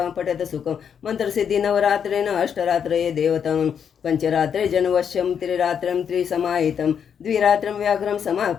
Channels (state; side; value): quieter; right; 7.7 dB